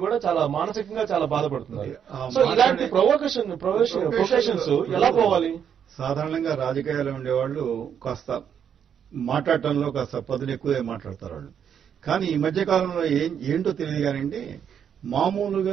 కూడా చాలా మానసికంగా చాలా బాధపడుతున్నారు. సో ఇలాంటి ప్రొవోకేషన్స్ ఎలా పోవాలి? సాధారణంగా రాజకీయాల్లో ఉండేవాళ్ళు కాస్త మాట్లాడటంలో కాస్త పదులు ఎక్కువే మాట్లాడతారు వాళ్ళు. కానీ ఈ మధ్య కాలంలో ఏంటో తెలియదు కానివ్వండి,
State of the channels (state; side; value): quieter; left; 8.2 dB